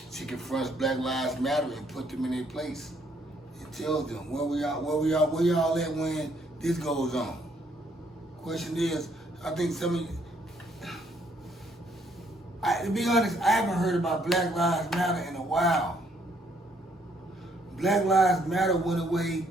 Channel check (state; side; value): normal; both; correlation 0.68